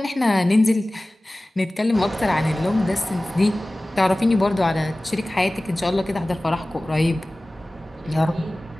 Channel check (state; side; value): normal; both; correlation 0.98